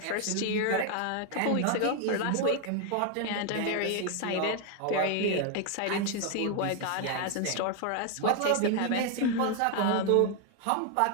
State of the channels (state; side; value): different; both; correlation 0.01